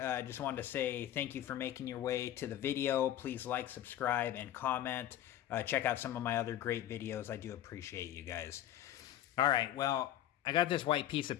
just wanted to say thank you for making your way to the video. Please like, subscribe, and comment. Check out some of my other great videos. I do appreciate you guys. All right, well, I got this white piece of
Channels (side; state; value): right; quieter; 12.1 dB